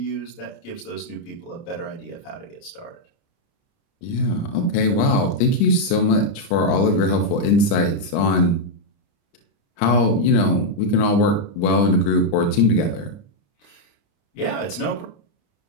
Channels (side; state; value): right; late; 30 ms